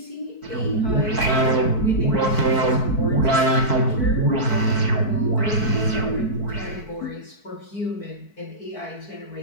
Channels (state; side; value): late; right; 4.6 ms